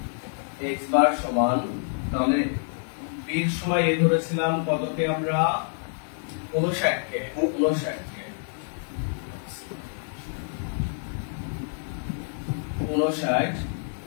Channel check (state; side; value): silent; right; digital silence